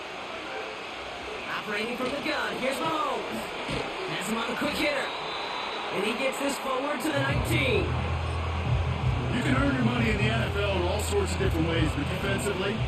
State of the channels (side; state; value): both; identical; correlation 1.00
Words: Operating from the gun, here's Mahomes. Has him on the quick hitter. And he gets this forward to the 19. You can earn your money in the NFL in all sorts of different ways, but defensively,